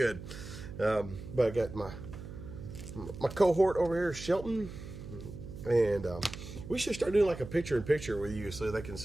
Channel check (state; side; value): noise; right; hum, 12 dB below the sound